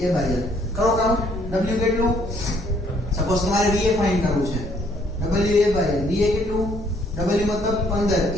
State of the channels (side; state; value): both; normal; correlation 0.65